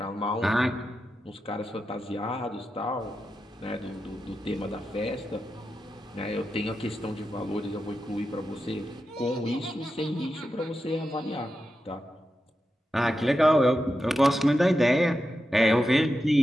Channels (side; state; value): both; normal; correlation 0.89